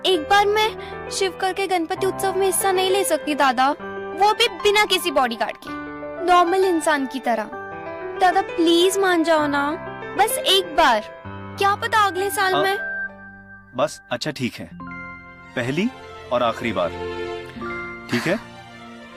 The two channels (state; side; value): identical; both; correlation 1.00